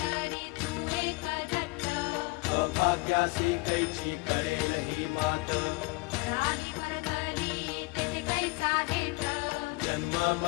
तू एक दत्त अभाग्यासी कैची कळेल ही मात पराली वरधरी तेथे कैचा हेत जन्म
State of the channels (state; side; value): quieter; right; 25.8 dB